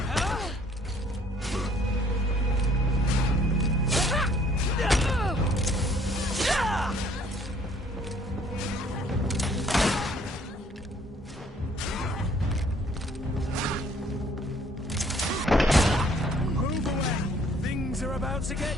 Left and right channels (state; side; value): normal; both; correlation 0.60